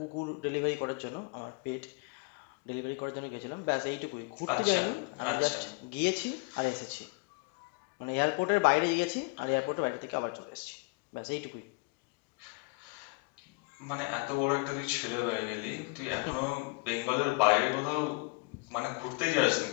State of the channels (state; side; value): quieter; right; 31.1 dB